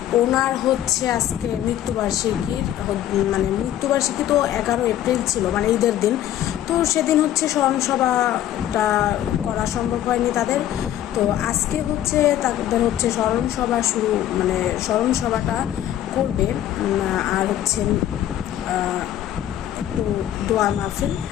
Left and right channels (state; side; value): quieter; right; 12.1 dB